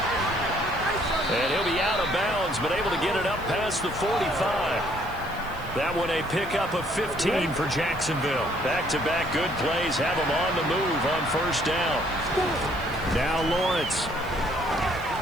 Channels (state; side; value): noise; right; hiss, 22 dB below the sound